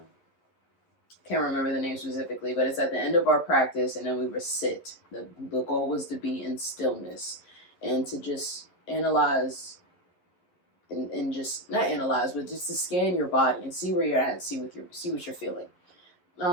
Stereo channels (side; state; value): right; late; 11 ms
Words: Can't remember the name specifically, but it's at the end of our practice, and then we would sit. The goal was to be in stillness and to just analyze and just not analyze, but just to scan your body and see where you're at and see what you're feeling.